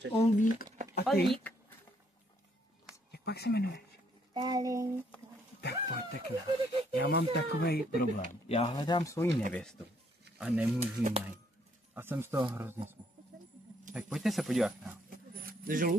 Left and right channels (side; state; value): both; normal; correlation 0.69